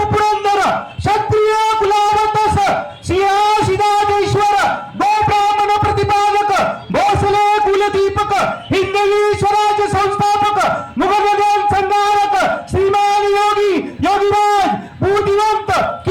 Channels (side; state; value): both; identical; correlation 1.00